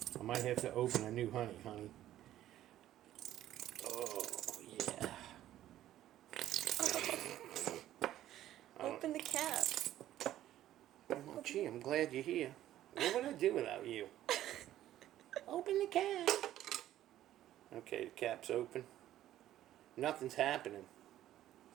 I might have to open a new honey. Oh, yeah. Open the cap. Oh, gee, I'm glad you're here. What would I do without you? Open the cap. Okay, the cap's open. Nothing's happening.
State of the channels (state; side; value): quieter; left; 13.0 dB